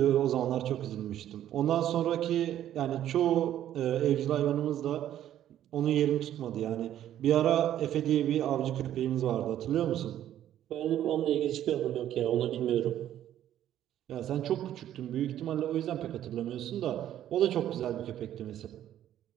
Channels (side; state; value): left; quieter; 11.6 dB